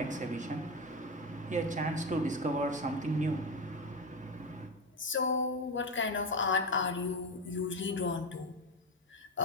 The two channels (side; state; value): both; normal; correlation 0.17